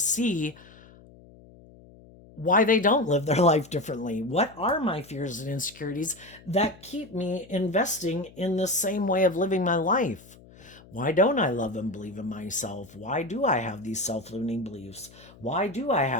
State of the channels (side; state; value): left; noise; hum, 23 dB below the sound